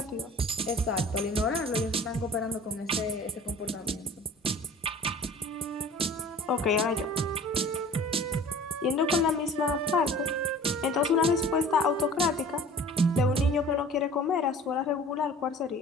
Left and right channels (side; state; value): both; normal; correlation 0.45